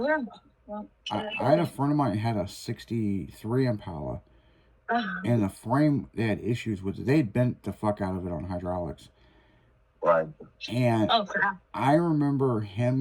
I had a friend of mine had a 63 Impala. And the frame, they had issues with it. They had bent the fuck out of it on hydraulics. Right. And Oh crap! I remember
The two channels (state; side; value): identical; both; correlation 1.00